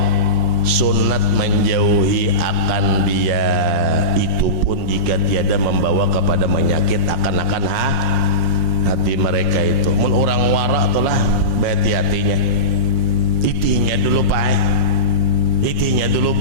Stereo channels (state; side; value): late; left; 5.6 ms